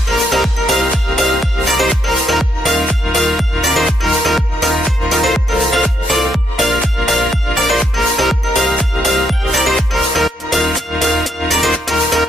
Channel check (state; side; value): normal; both; correlation 0.77